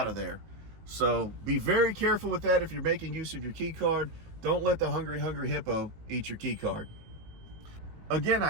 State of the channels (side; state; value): left; late; 18 ms